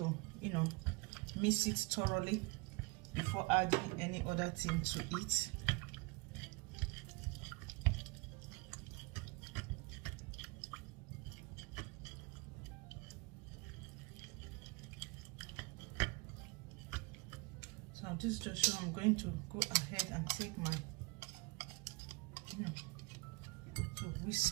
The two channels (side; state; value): left; quieter; 25.5 dB